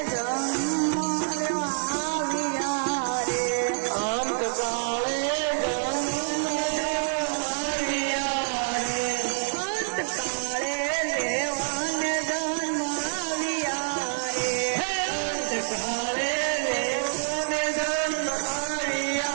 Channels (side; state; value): left; silent; digital silence